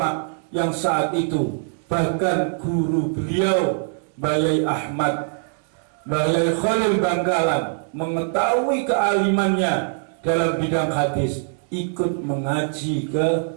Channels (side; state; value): left; silent; digital silence